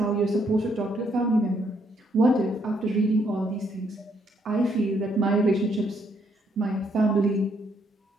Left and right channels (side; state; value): both; normal; correlation 0.72